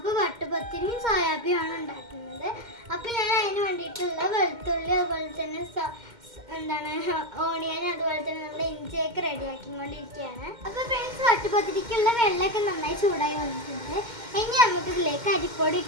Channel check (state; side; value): late; left; 2.1 ms